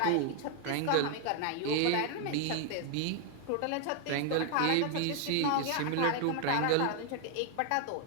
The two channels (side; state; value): both; different; correlation 0.00